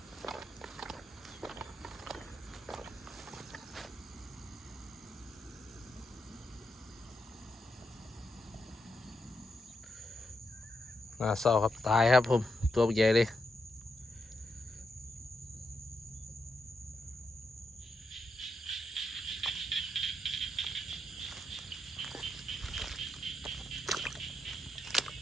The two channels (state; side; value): normal; both; correlation 0.83